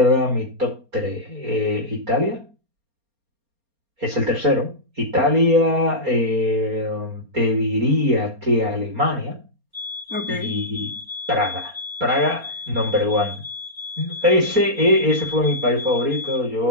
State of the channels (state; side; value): late; left; 4.3 ms